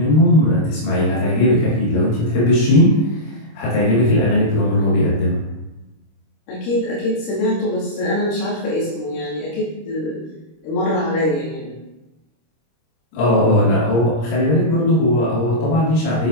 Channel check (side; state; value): right; late; 26 ms